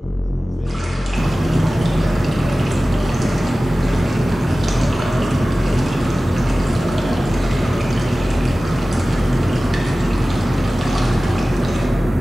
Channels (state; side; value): normal; both; correlation 0.96